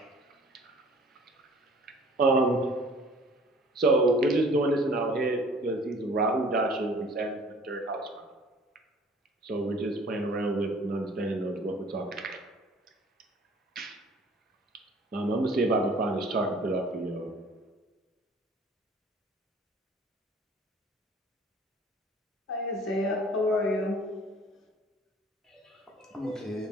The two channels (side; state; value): both; normal; correlation 0.51